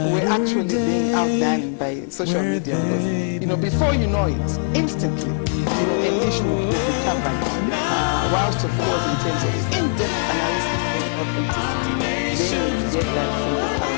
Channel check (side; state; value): right; silent; digital silence